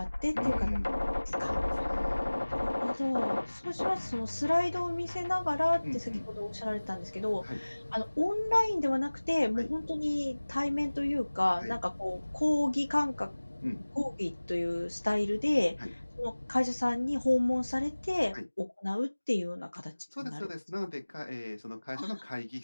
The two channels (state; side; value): inverted; both; correlation -1.00